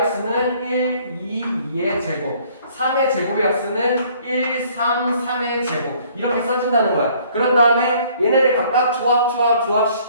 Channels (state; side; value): inverted; both; correlation -0.59